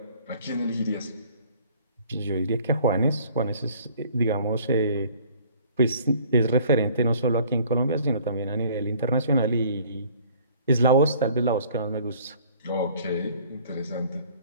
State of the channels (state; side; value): inverted; both; correlation -0.54